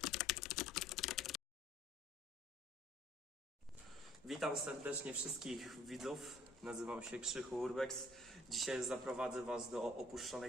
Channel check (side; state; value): both; normal; correlation 0.57